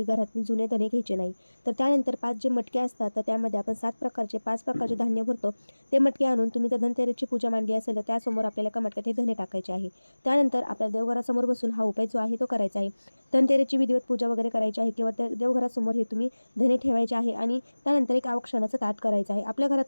घरातील जुने धने घ्यायचे नाही. तर त्यानंतर 5 जे मटके असतात, तर त्यामध्ये आपण 5 प्रकारचे धान्य भरतो. ते मटके आणून तुम्ही तर धनतेरसची पूजा मांडली असेल तर त्यासमोर आपल्याला एका मटक्यात हे धने टाकायचे आहे. त्यानंतर आपल्या देवघरासमोर बसून हा उपाय जो आहे तो करायचा आहे. धनतेरसची विधिवत पूजा वगैरे करायची आहे किंवा त्या देवघरासमोर हे तुम्ही धने ठेवायचे आहे आणि त्यानंतर एक औक्षणाचं ताट करायचं आहे. आपल्या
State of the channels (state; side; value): inverted; both; correlation -1.00